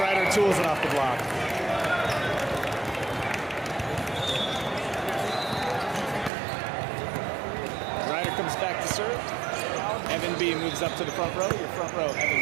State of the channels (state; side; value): drops out; left; at 6.3 s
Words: tools it off the block. Ryder comes back to serve. Evan B moves up to the front row. Your front row,